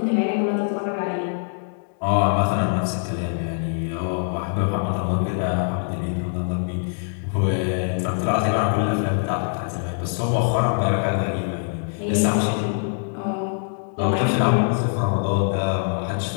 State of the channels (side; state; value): right; silent; digital silence